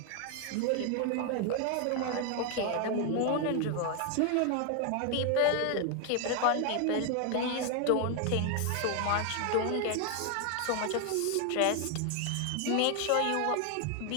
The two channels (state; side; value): different; both; correlation 0.00